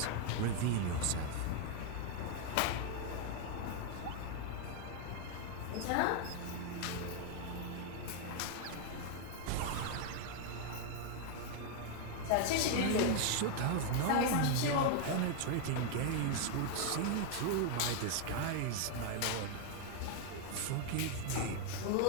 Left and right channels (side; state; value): both; different; correlation 0.00